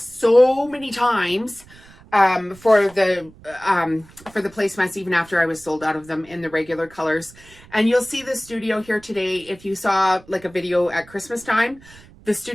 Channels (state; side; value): noise; right; rumble, 23 dB below the sound